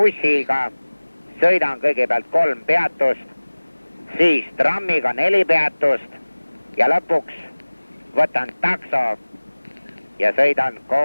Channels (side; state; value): both; inverted; correlation -1.00